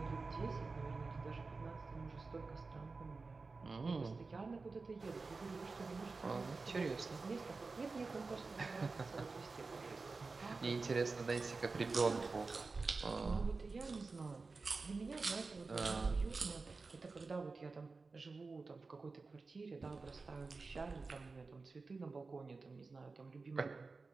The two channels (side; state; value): left; quieter; 4.0 dB